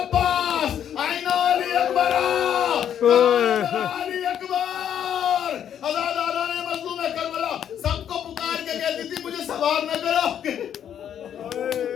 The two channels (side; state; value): right; quieter; 9.5 dB